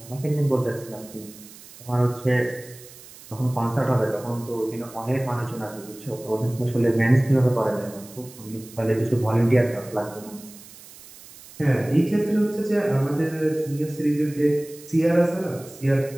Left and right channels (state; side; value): noise; right; hiss, 19 dB below the sound